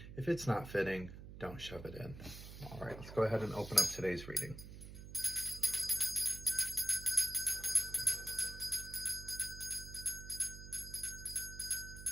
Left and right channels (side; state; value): right; noise; hum, 12 dB below the sound